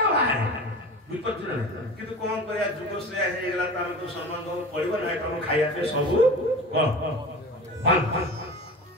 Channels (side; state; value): both; normal; correlation 0.34